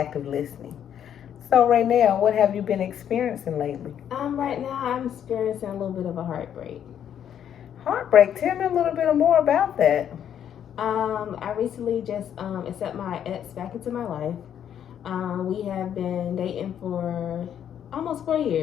listening. So, Raynell, what have you been experiencing lately? Right now I'm experiencing a little bit of a heartbreak. Heartbreak. Tell me a little bit more about that. I recently just accept my ex back into my life. We have been dating for almost 4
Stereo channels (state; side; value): quieter; right; 9.4 dB